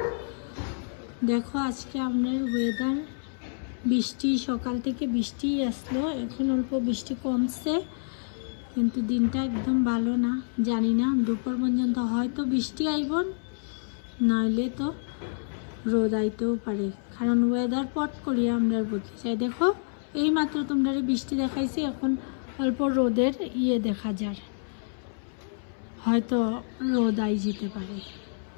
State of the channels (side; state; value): right; silent; 59 dB below the other